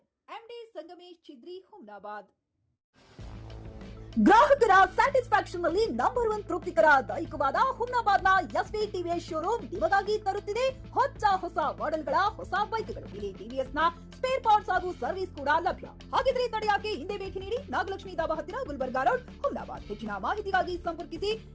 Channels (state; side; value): identical; both; correlation 1.00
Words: ಎಂಡಿ ಸಂಗಮೇಶ್ ಚಿದ್ರಿ, ಹುಮ್ನಾಬಾದ್. ಗ್ರಾಹಕರ ಸ್ಯಾಟಿಸ್ಫ್ಯಾಕ್ಷನ್ ನಲ್ಲಿ ನಂಬರ್ 1 ತೃಪ್ತಿಕರ ದೈಹಿಕವಾದ ಹುಮ್ನಾಬಾದ್ನ ಎಸ್ವಿ ಟಿವಿಎಸ್ ಶೋರೂಮ್ ನಿಮಗಾಗಿ ತರುತ್ತಿದೆ ಹೊಸ ಮಾಡೆಲ್ಗಳ ಹೊಸ ಬೈಕ್ಗಳು. ಇಲ್ಲಿ ಟಿವಿಎಸ್ ನ ಸ್ಪೇರ್ ಪಾರ್ಟ್ಸ್ ಹಾಗೂ ಸರ್ವಿಸ್ ಕೂಡ ಲಭ್ಯ. ಹಾಗಿದ್ರೆ ತಡೆಯಾಕೆ ಹಿಂದೆ ಭೇಟಿ ನೀಡಿ. ನಾಗಲಕ್ಷ್ಮಿ ದಾಬಾ ಹತ್ತಿರ, ಗುಲ್ಬರ್ಗಾ ರೋಡ್, ಹುಮ್ನಾಬಾದ್. ಹೆಚ್ಚಿನ ಮಾಹಿತಿಗಾಗಿ ಸಂಪರ್ಕಿಸಿ